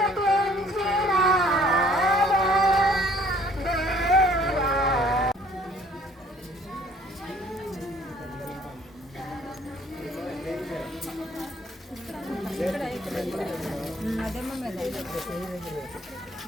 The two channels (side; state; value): both; normal; correlation 0.57